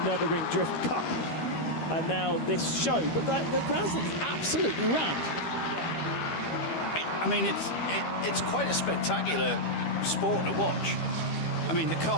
Nürburgring Drift Cup. And now this show, but the grandstand is absolutely rammed. I mean, it's quite a spectacular sport to watch. I mean, the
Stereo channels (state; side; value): late; right; 13 ms